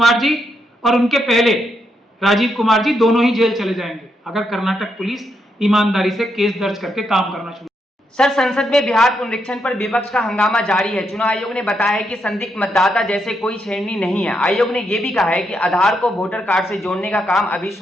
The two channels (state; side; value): normal; both; correlation 0.80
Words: जी और उनके पहले राजीव कुमार जी दोनों ही जेल चले जाएंगे, अगर कर्नाटक पुलिस ईमानदारी से केस दर्ज करके काम करना शुरू। सर, संसद में बिहार पुनरीक्षण पर विपक्ष का हंगामा जारी है। चुनाव आयोग ने बताया है कि संदिग्ध मतदाता जैसे कोई छेड़नी नहीं है। आयोग ने यह भी कहा है कि आधार को वोटर कार्ड से जोड़ने का काम अभी